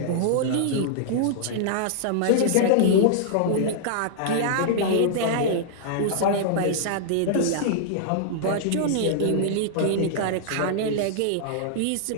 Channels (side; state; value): both; different; correlation -0.01